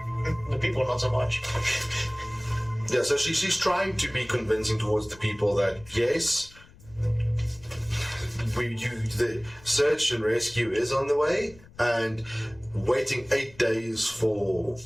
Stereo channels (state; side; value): noise; left; rumble, 24 dB below the sound